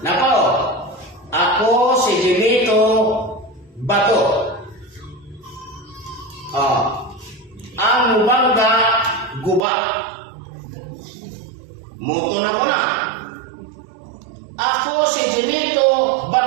Nako, ako si Jimito Bato. Ang mubangga guba. Muto na ko na. Ako si Jimito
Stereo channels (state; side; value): drops out; left; at 9.6 s